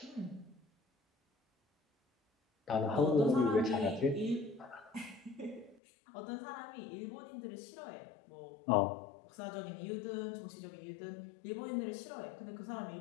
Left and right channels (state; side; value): drops out; right; at 5.8 s